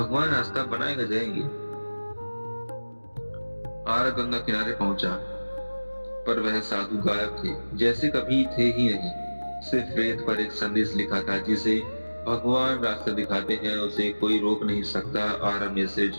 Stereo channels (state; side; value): inverted; both; correlation -1.00